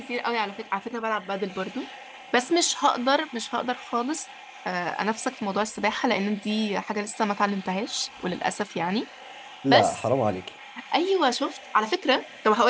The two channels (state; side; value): identical; both; correlation 1.00